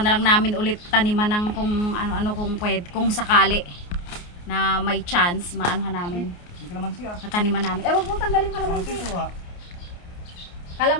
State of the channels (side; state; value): right; late; 29 ms